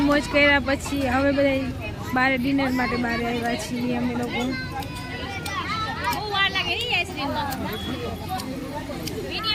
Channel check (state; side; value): identical; both; correlation 1.00